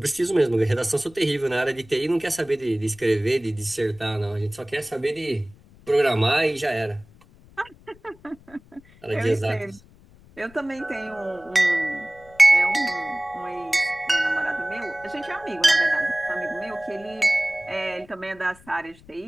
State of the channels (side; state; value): left; noise; rumble, 25 dB below the sound